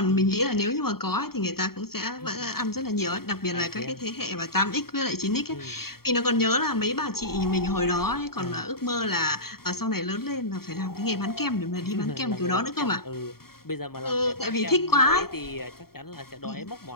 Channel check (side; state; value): right; late; 0.95 ms